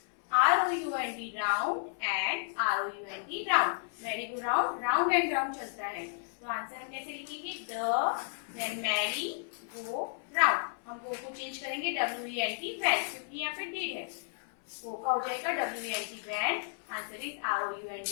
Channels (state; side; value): silent; right; 56 dB below the other